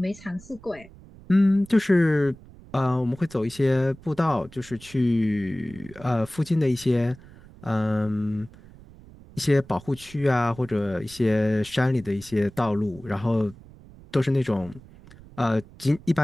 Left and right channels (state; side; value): noise; right; rumble, 21 dB below the sound